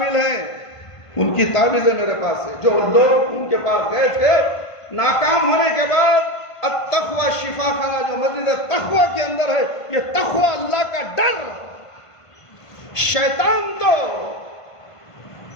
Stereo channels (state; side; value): late; right; 1.5 ms